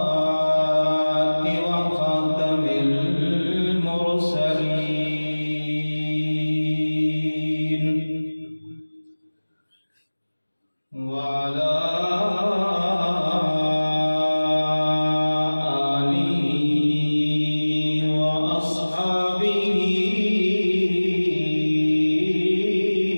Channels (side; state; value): both; inverted; correlation -1.00